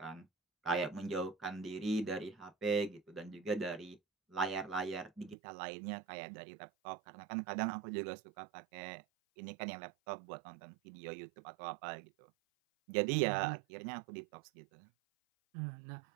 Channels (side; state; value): left; drops out; at 5.4 s